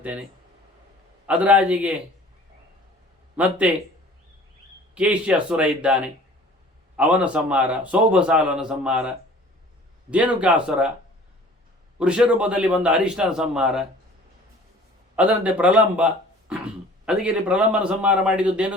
ಅದರಾಜಿಗೆ ಮತ್ತೆ ಕೇಶ್ಯ ಅಸುರ ಇದ್ದಾನೆ, ಅವನ ಸಂಹಾರ. ಸೌಭಸಾಲನ ಸಂಹಾರ, ಧೇನುಕಾಸುರ, ವೃಷರೂಪದಲ್ಲಿ ಬಂದ ಹರಿಷ್ಠನ ಸಂಹಾರ. ಅದರಂತೆ ಪ್ರಲಂಬ. ಅದಕ್ಕೆ ಇಲ್ಲಿ ಪ್ರಲಂಬನ ಸಂಹಾರ ಮಾಡಿದ್ದು,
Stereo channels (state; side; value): normal; both; correlation 0.48